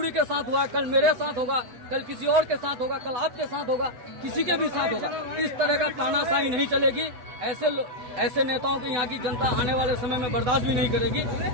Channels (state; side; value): late; left; 8.1 ms